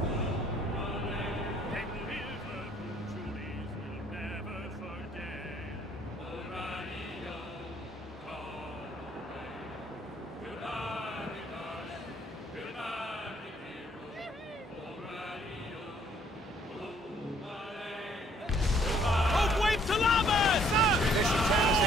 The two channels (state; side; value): normal; both; correlation 0.63